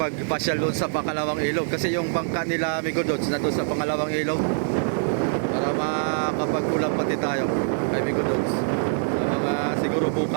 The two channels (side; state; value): left; silent; digital silence